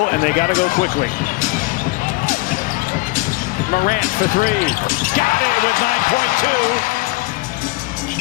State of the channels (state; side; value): quieter; right; 22.9 dB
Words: and they got to go quickly. Morant for three. Got it with